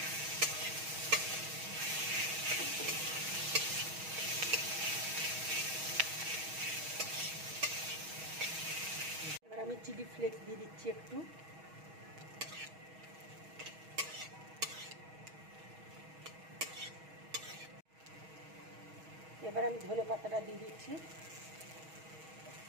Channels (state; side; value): late; left; 6.3 ms